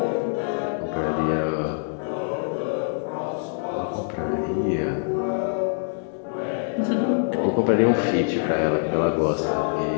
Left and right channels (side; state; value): right; silent; digital silence